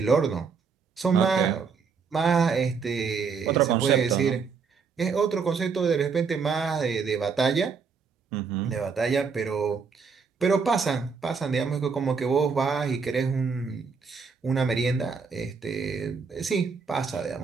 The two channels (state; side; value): quieter; left; 5.5 dB